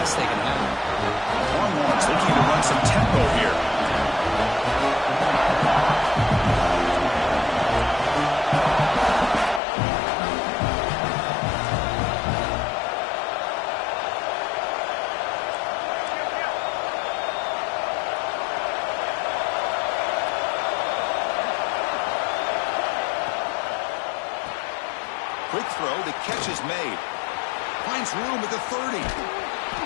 they can have. Longhorns looking to run some tempo here. Quick throw, the catch is made. Finds room at the 30.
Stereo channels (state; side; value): drops out; right; at 9.6 s